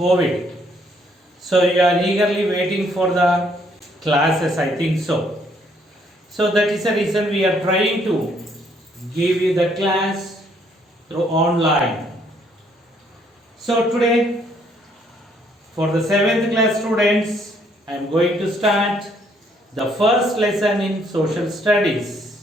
So you are eagerly waiting for the classes, I think so. So that is the reason we are trying to give you the class through online. So today for the 7th class students, I am going to start the first lesson in social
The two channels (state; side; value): normal; both; correlation 0.68